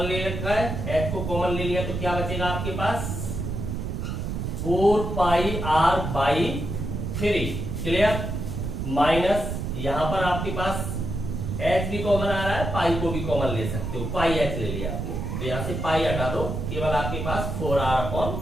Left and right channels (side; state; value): right; noise; rumble, 4 dB below the sound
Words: ले रखा है, H को कॉमन ले लिया तो क्या बचेगा आपके पास, 4 पाई r बाई 3, क्लियर। माइनस यहां पर आपके पास H भी कॉमन आ रहा है, पाई को भी कॉमन ले सकते हो, पाई H ले लिया आपने, तो यहां से पाई हटा दो, केवल आपके पास